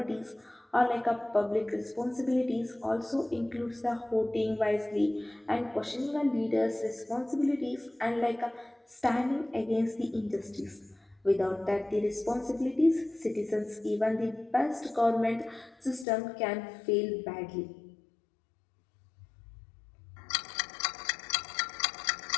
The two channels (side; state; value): right; drops out; at 16.1 s